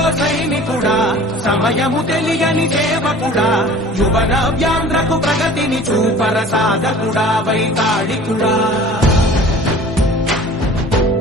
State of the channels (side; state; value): both; normal; correlation 0.45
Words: సైనికుడా, సమయము తెలియని సేవకుడా, యువ నవ్యాంధ్రకు ప్రగతిని చూపర సాధకుడా, వైతాళికుడా.